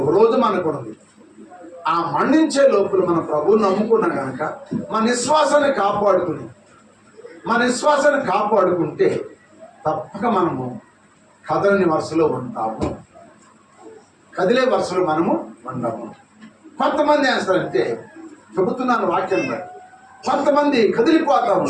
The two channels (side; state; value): both; identical; correlation 1.00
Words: రోజు మనకు ఉంది. ఆ మరణించే లోపల మన ప్రభువుని నమ్ముకున్నాం కనుక మన విశ్వాసాన్ని కాపాడుకుంటే తప్పక మనము కదలని వరుసలో ఉంటాము, కదిలే వరుసలో మనము ఉండము. కొంతమంది వేస్తారంటే చెబుతున్నాను వాక్యం బట్టి, కొంతమంది కదిలిపోతూ